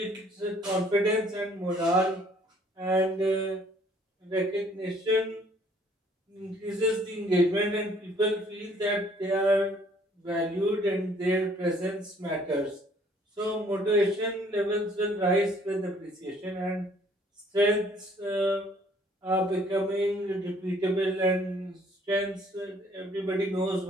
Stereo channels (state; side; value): normal; both; correlation 0.60